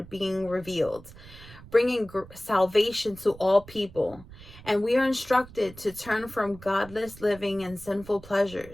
being revealed, bringing salvation to all people. And we are instructed to turn from godless living and sinful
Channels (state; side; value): noise; right; rumble, 19 dB below the sound